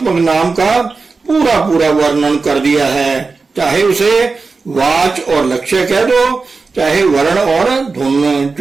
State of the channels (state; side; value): quieter; left; 4.3 dB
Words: नाम का पूरा पूरा वर्णन कर दिया है। चाहे उसे वाच और लक्ष्य कह दो, चाहे वर्ण और धुन।